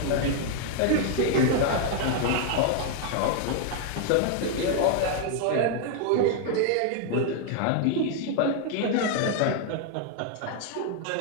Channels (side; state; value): both; different; correlation 0.00